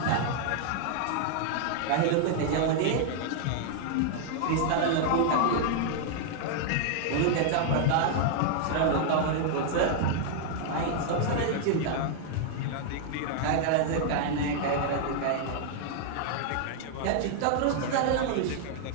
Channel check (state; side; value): different; both; correlation -0.01